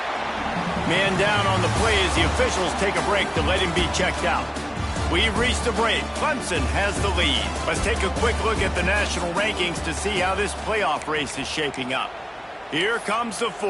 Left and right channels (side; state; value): both; identical; correlation 1.00